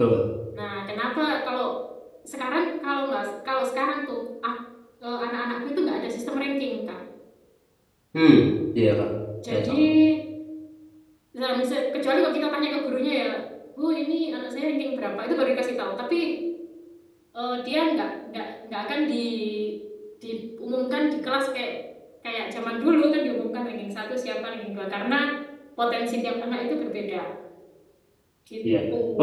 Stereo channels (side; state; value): both; identical; correlation 1.00